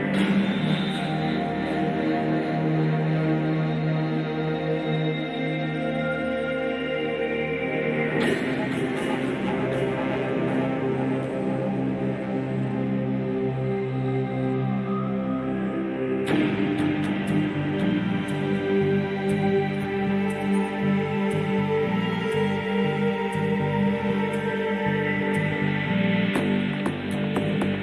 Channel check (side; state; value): both; identical; correlation 1.00